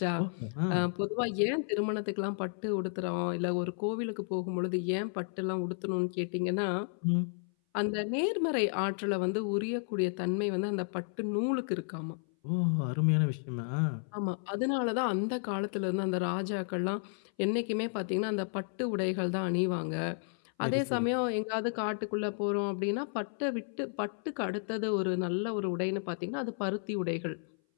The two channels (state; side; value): silent; right; 56 dB below the other